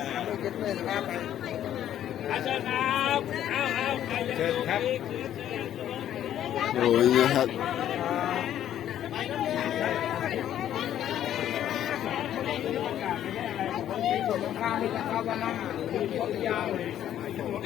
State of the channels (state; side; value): quieter; right; 11.1 dB